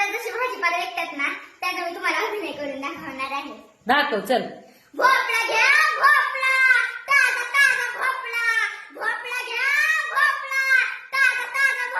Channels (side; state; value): both; identical; correlation 1.00